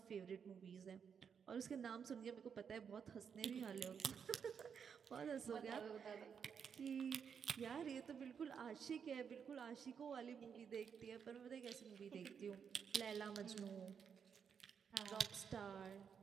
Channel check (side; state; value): left; quieter; 7.0 dB